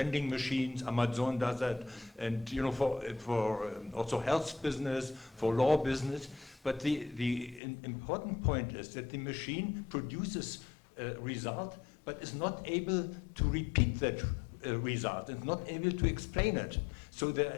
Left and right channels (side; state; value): right; drops out; at 7.6 s